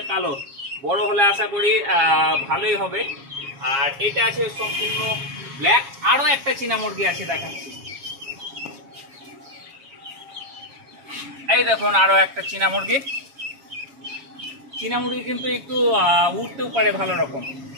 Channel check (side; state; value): left; late; 7.3 ms